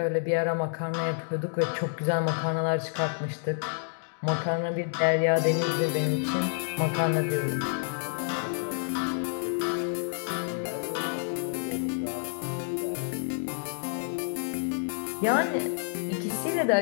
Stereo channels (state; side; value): silent; right; digital silence